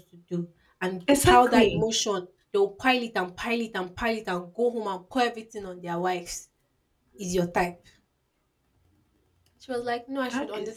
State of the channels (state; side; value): identical; both; correlation 1.00